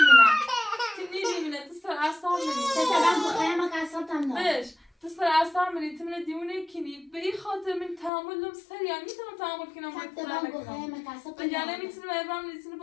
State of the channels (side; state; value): right; drops out; at 8.1 s